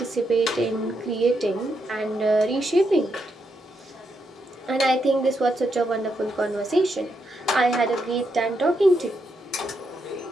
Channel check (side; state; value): both; normal; correlation 0.81